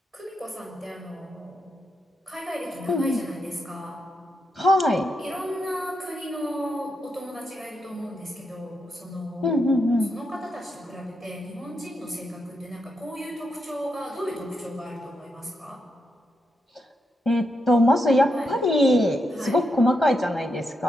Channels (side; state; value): both; normal; correlation 0.83